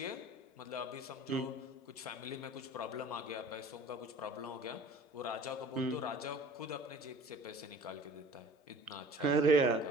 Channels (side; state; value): both; normal; correlation 0.45